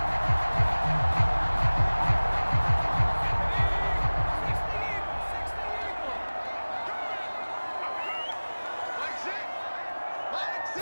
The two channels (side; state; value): both; inverted; correlation -1.00